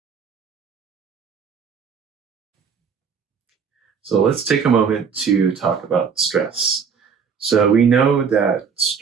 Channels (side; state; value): left; quieter; 6.3 dB